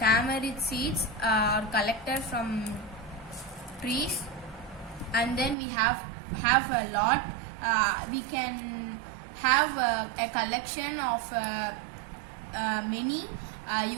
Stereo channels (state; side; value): drops out; left; at 5.6 s